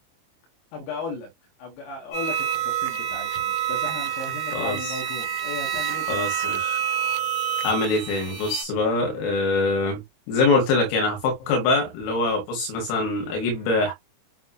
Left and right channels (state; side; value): late; right; 23 ms